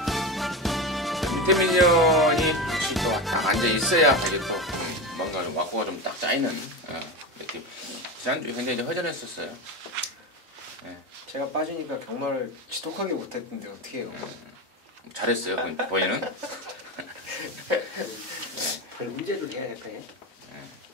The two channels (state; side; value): normal; both; correlation 0.21